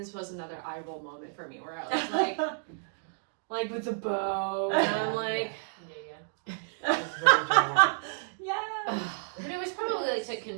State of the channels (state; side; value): silent; left; digital silence